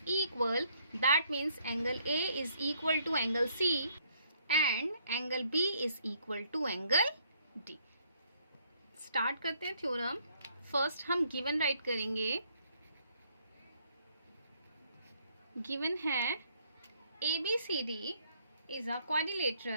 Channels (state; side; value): inverted; both; correlation -0.67